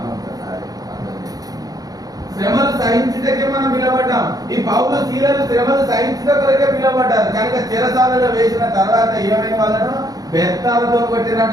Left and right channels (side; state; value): left; late; 0.18 ms